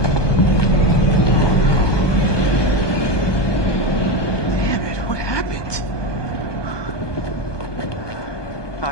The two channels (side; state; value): right; late; 1.2 ms